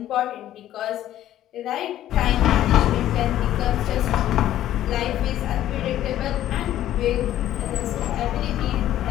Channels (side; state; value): right; quieter; 12.6 dB